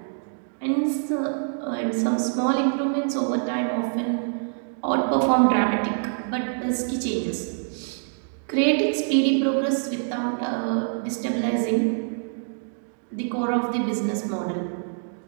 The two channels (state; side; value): silent; left; digital silence